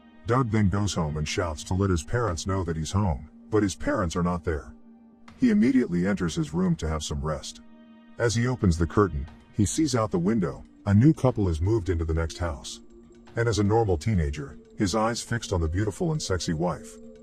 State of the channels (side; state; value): both; identical; correlation 1.00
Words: Doug then goes home and shouts to let his parents know that he's home, but his parents are not there. He immediately enters his room to have some rest. As he opens the curtain, he sees out the window, a new couple has moved into the next house. And as a normal teenager, his eyes fixed on the beautiful and sexy wife.